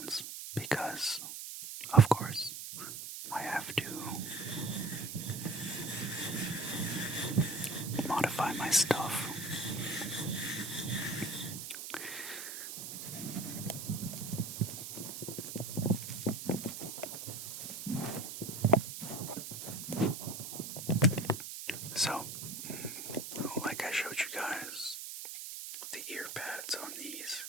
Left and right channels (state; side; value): noise; right; hiss, 8 dB below the sound